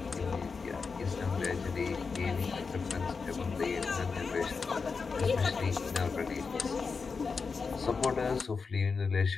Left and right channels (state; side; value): quieter; right; 4.9 dB